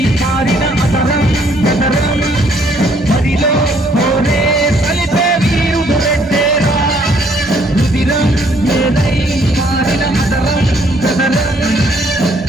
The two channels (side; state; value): both; normal; correlation 0.65